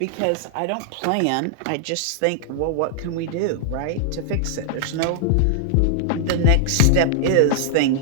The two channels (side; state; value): both; different; correlation -0.01